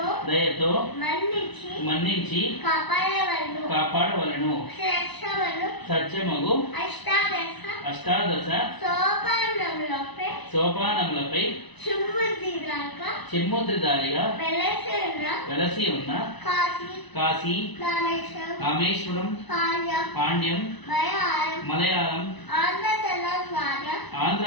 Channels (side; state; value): right; late; 1.0 ms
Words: దయతో మన్నించి కాపాడవలను సత్యమగు అష్టాదశ సోపానములపై చిమ్ముద్రిదారిగా వెలసి ఉన్న కాశీ రామేశ్వరం పాండ్యం మలయాళం ఆంధ్ర